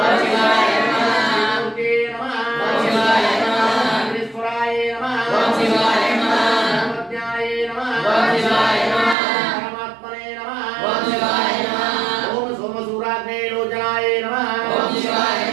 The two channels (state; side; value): drops out; left; at 9.2 s